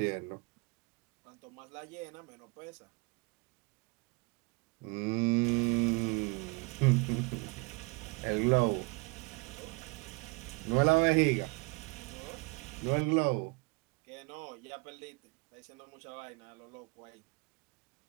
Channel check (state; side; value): quieter; left; 28.4 dB